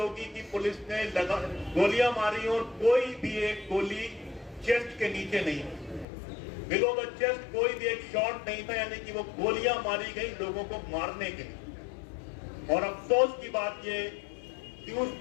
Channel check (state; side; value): drops out; right; at 6.1 s